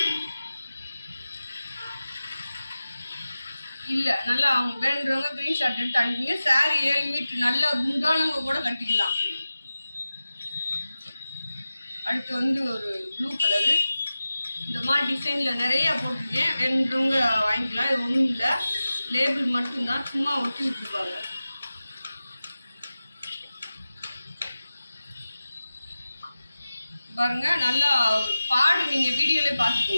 இல்லை. நல்லா அவங்க வேணுன்றவங்க க்ரீன் ஷாட் எடுத்து அனுப்பிங்க. சாரி 7 மீட்ரு நல்லா குண்டானவங்க கூட கட்டிக்கலாம். அடுத்து வந்து ஒரு ப்ளூ கலரு. இந்த மாதிரி டிசைனில் நிறையா போட்டிருக்கேன். வேணுன்றவங்க வாங்கிக்கலாம். இது ஒன்றும் இல்லை, லேபிள் மட்டும்தான், சும்மா ஒட்டி விட்டுருப்பாங்க. பாருங்க, நல்லா பாடு நீங்கள் வீடியோலேயே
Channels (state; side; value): inverted; both; correlation -0.95